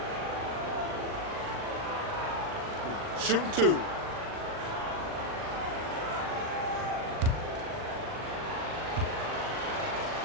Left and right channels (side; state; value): left; late; 40 ms